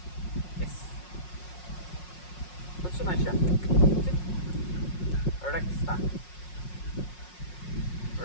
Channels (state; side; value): late; right; 5.5 ms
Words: Yes. Put some extra. Rexta.